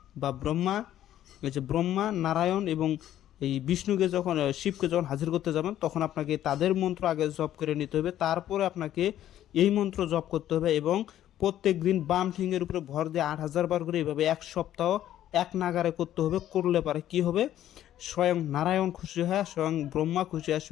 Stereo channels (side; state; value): right; quieter; 12.1 dB